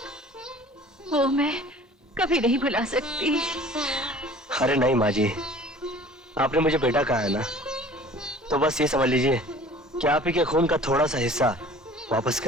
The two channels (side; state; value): both; normal; correlation 0.47